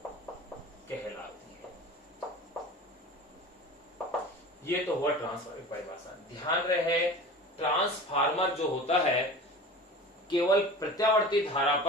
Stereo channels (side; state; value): both; normal; correlation 0.36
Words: कहलाती है। ये तो हुआ ट्रांसफार्मर की परिभाषा। ध्यान रहे ट्रांसफार्मर जो होता है केवल प्रत्यावर्ती धारा